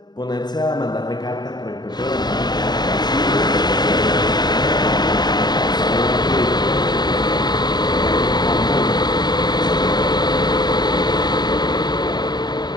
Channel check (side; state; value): right; late; 0.20 ms